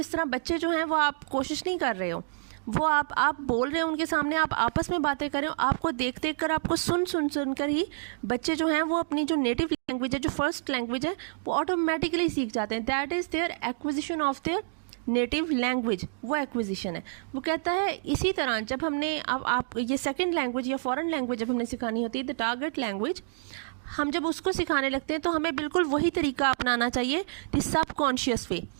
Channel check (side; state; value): left; silent; digital silence